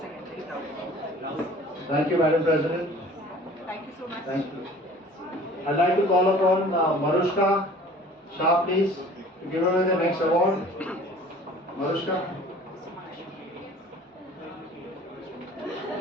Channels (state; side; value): normal; both; correlation 0.47